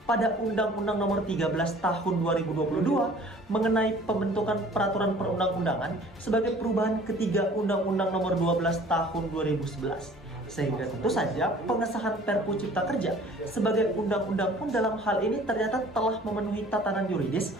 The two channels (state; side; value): normal; both; correlation 0.50